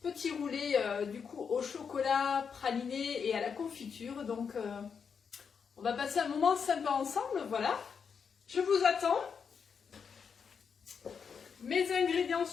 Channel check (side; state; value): right; quieter; 6.4 dB